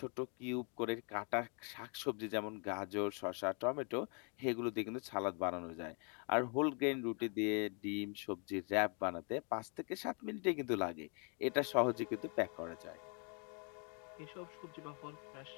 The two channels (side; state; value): right; quieter; 37.4 dB